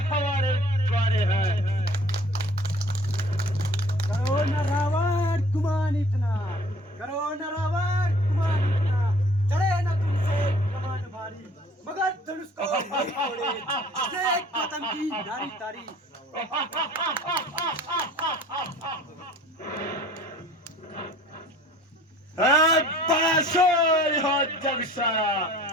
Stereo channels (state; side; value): normal; both; correlation 0.51